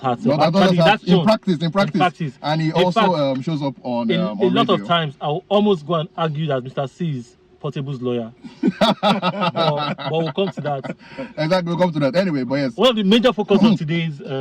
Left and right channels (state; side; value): identical; both; correlation 1.00